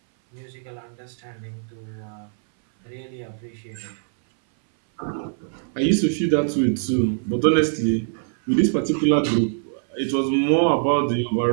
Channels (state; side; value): silent; left; 61 dB below the other